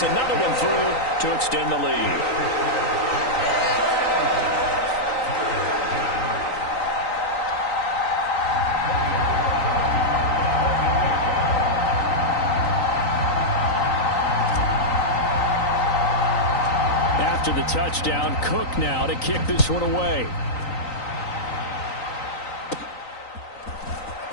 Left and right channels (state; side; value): late; right; 3.9 ms